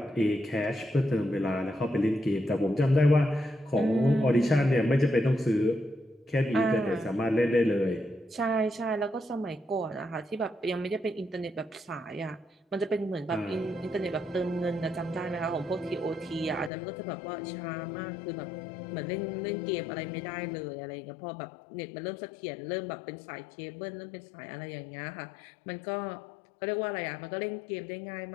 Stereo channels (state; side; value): drops out; right; at 16.7 s